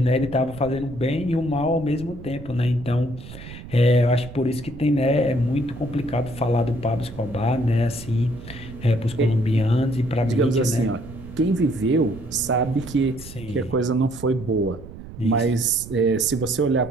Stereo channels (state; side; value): noise; right; rumble, 14 dB below the sound